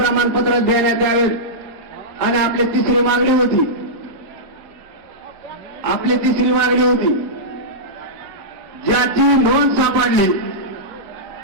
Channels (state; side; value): late; left; 4.7 ms